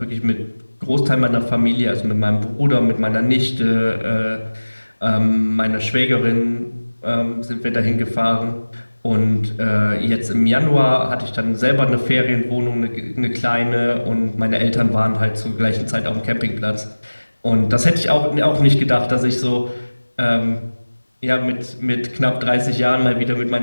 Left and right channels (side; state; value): both; inverted; correlation -1.00